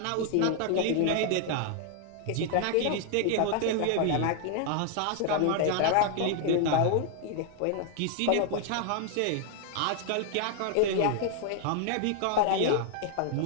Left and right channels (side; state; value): both; different; correlation 0.00